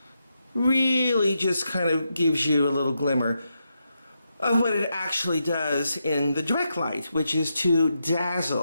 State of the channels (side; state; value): both; inverted; correlation -0.84